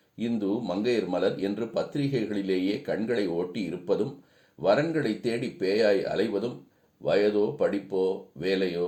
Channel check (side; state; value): both; identical; correlation 1.00